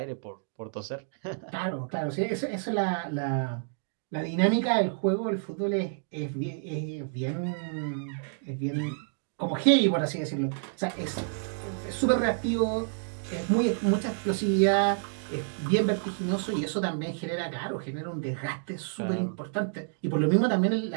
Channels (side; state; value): left; silent; digital silence